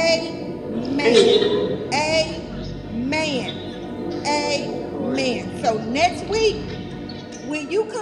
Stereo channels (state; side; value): identical; both; correlation 1.00